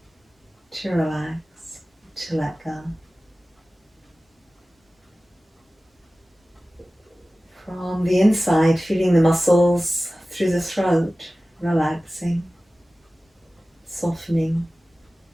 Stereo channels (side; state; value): both; normal; correlation 0.97